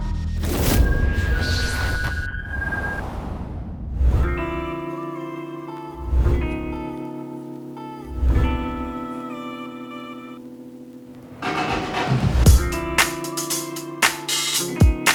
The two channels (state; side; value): identical; both; correlation 1.00